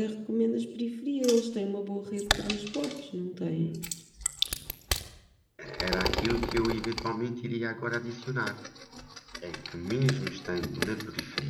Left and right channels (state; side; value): identical; both; correlation 1.00